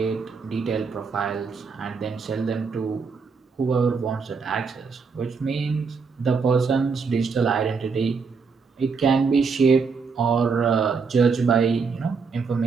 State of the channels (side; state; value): left; quieter; 5.2 dB